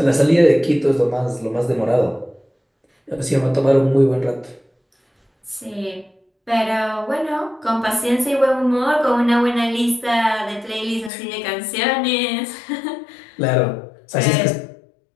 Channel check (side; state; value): right; drops out; at 11.1 s